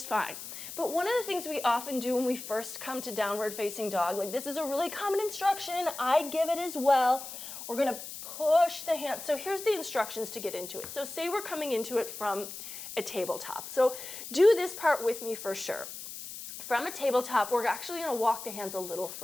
fine. But one of the things we often do when we first come to downward facing dog, like this is a really common instruction, I give it as well. We're gonna push the hands. So here's the instructions to get into it. So say we're coming into it from a tabletop. So do this part with me for sure. From a tabletop, we're actually gonna walk the hands a little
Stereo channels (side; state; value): left; noise; hiss, 10 dB below the sound